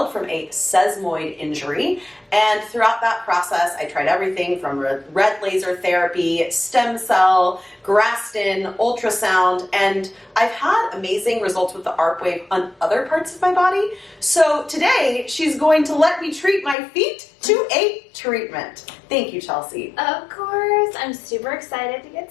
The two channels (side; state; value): right; drops out; at 16.8 s